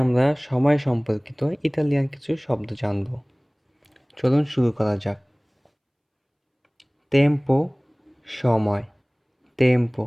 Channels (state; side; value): identical; both; correlation 1.00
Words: সময় সম্পর্কিত ইতালিয়ান কিছু শব্দ জানব। চলুন শুরু করা যাক। টেম্পো সময়,